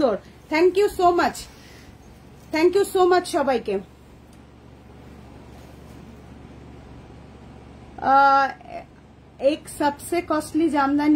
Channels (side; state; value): both; identical; correlation 1.00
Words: Thank you so much, thank you so much সবাইকে। एक सबसे कॉस्टली